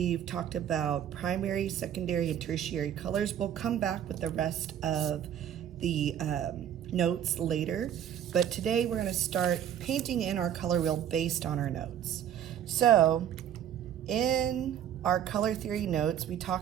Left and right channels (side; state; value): left; quieter; 10.0 dB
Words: talked about primary, secondary, and tertiary colors. We'll come back with the rest of the notes later, but today we're going to start painting in our color wheel based on our notes. So, in our color theory notes, we